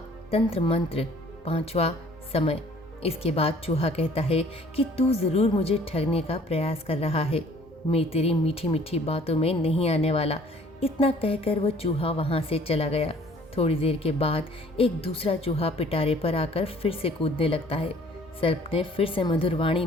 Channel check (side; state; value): both; normal; correlation 0.55